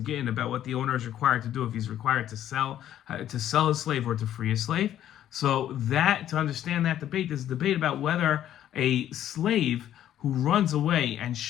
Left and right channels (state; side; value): quieter; right; 11.4 dB